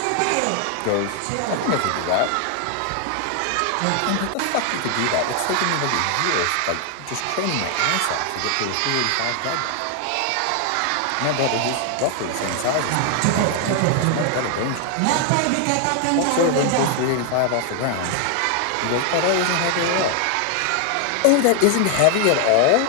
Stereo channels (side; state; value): both; different; correlation 0.00